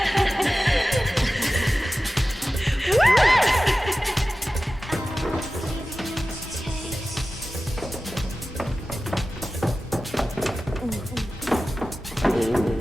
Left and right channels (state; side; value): normal; both; correlation 0.95